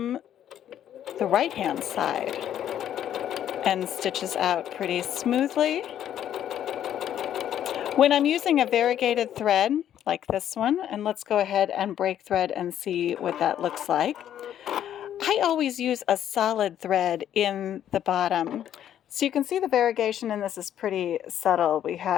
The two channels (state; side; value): quieter; right; 10.6 dB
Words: the right-hand side and stitches out pretty smoothly. When I'm using a variegated thread like this one, and let's go ahead and break thread and see what that looks like. I always use a solid thread in the bottom. So you can see the variegation in this is pretty subtle. We